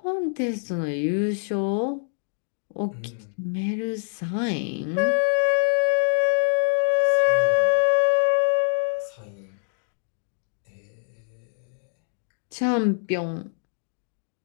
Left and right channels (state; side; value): silent; right; digital silence